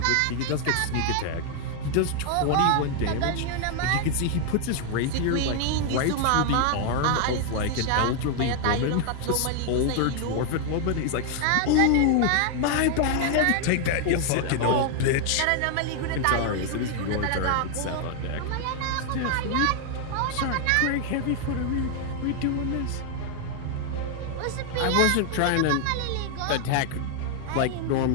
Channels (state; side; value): different; both; correlation 0.00